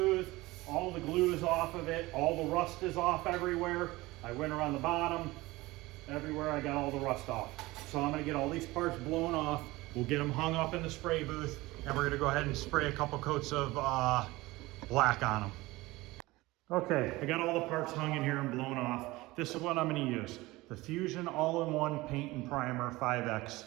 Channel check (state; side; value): quieter; left; 20.2 dB